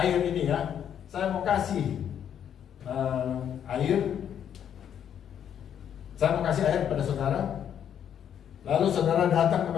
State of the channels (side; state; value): right; quieter; 9.1 dB